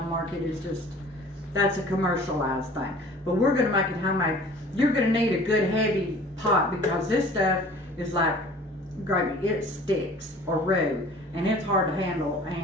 the market, is just, that's a commercialized thing. But we're going to make it homemade. You're going to need a good heavy pot because this stuff is like gravy. It sticks or roux and it's hard to handle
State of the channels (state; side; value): normal; both; correlation 0.47